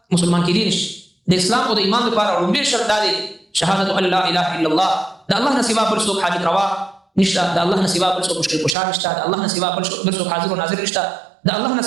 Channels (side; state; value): left; drops out; at 8.8 s